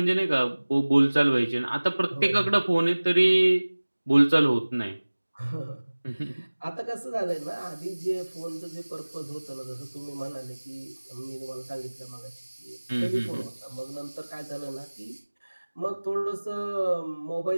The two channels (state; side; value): inverted; both; correlation -1.00